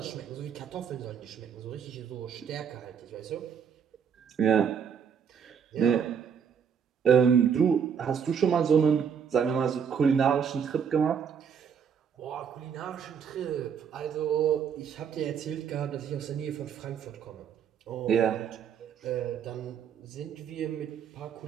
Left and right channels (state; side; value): quieter; left; 7.3 dB